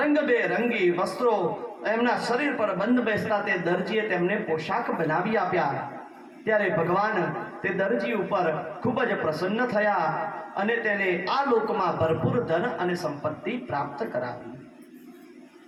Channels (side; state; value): both; identical; correlation 1.00